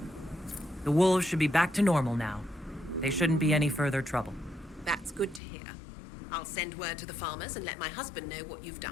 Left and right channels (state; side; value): drops out; right; at 5.4 s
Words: The wolves should be back to normal now. They shouldn't be any further trouble. That's good to hear. I'll send word to the farmers and let my husband know what you've